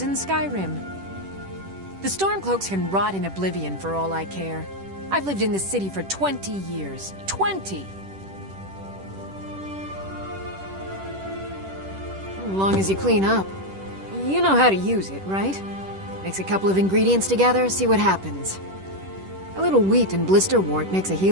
in Skyrim? The Stormcloaks can rot in oblivion for all I care. I've lived in this city for 20 years. 20! As long as you clean up. You know how to use it, right? Mix a couple of ingredients together, see what happens. A little wheat and blisterwort makes a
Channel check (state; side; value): late; left; 10 ms